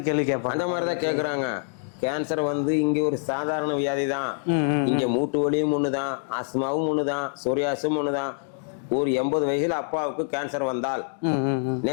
கேள்வி கேட்பாங்க. அந்த மாதிரி தான் கேட்கறாங்க. கேன்சர் வந்து இங்க ஒரு சாதாரண வியாதி தான். இங்க மூட்டு வலியும் ஒண்ணுதான், ஆஸ்மாவும் ஒண்ணுதான், சொரியாசும் ஒண்ணுதான். ஒரு 80 வயசுல அப்பாவுக்கு கேன்சர் வந்தால்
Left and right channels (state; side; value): silent; right; digital silence